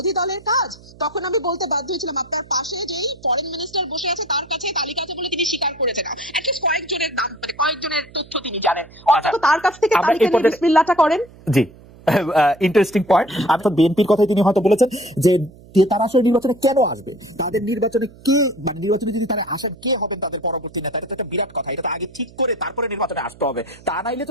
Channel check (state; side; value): noise; right; hum, 22 dB below the sound